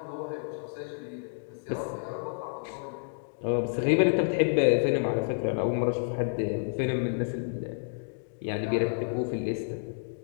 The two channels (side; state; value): right; silent; digital silence